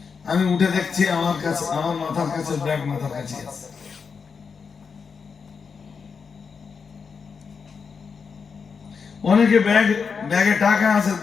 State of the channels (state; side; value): quieter; right; 5.7 dB